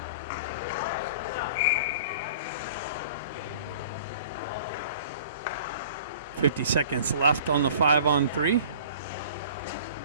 .50 left on the 5-on-3.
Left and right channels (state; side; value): inverted; both; correlation -0.46